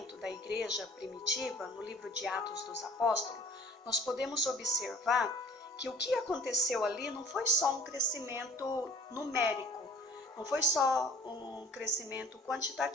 da igreja primitiva, no livro de Atos dos Apóstolos, nós podemos observar que o que aconteceu ali não foi só um crescimento numérico, não foi só um crescimento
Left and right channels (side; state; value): both; normal; correlation 0.50